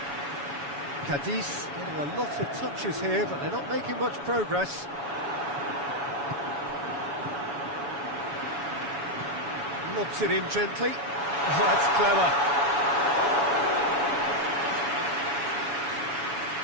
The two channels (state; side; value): late; left; 7.1 ms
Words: Cadiz getting a lot of touches here, but they're not making much progress. Lobs it in gently. Oh, that's clever.